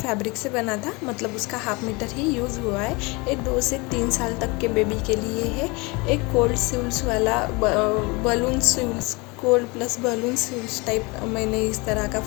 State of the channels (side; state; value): right; quieter; 26.7 dB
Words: से बना था, मतलब उसका हाफ मीटर ही यूज़ हुआ है। ये 2 से 3 साल तक के बेबी के लिए है। एक कोल्ड सिल्स वाला बलून सिल्स, कोल्ड प्लस बलून सिल्स टाइप मैंने इस तरह का